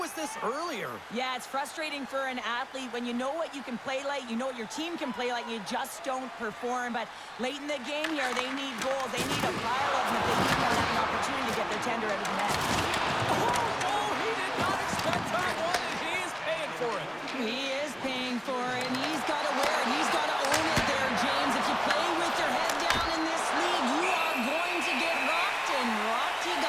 this earlier? Yeah, it's frustrating for an athlete when you know what you can play like, you know what your team can play like, you just don't perform. But late in the game here, they need goals. They need a pile of them if they keep on having an opportunity to get their tender out of the net. Oh, he did not expect that one, and he is paying for it. He is paying for it, and he's got to wear it. He's got to own it there, James. If you play with your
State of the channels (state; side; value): identical; both; correlation 1.00